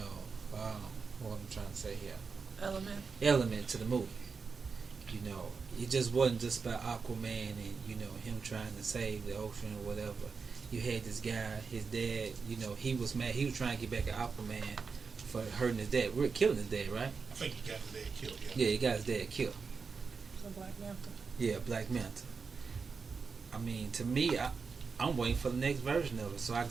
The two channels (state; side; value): quieter; left; 5.1 dB